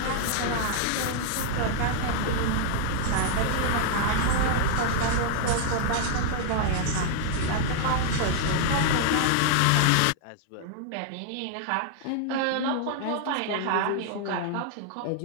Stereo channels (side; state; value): both; different; correlation -0.01